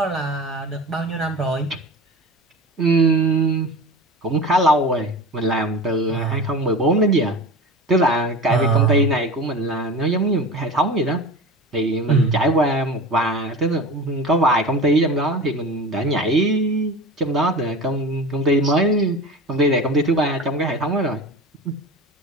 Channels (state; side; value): normal; both; correlation 0.32